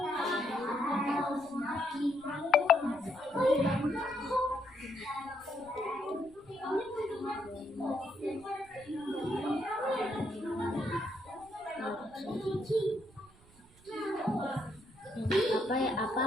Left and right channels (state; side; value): noise; right; rumble, 26 dB below the sound